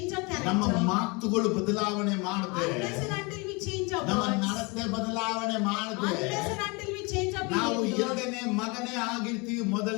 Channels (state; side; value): quieter; right; 28.5 dB